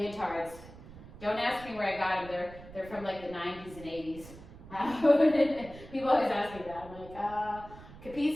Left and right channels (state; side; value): noise; right; rumble, 17 dB below the sound